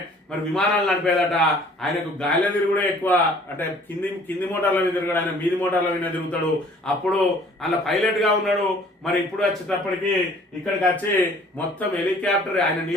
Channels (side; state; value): both; normal; correlation 0.54